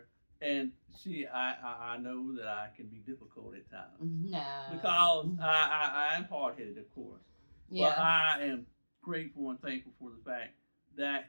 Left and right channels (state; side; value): inverted; both; correlation -1.00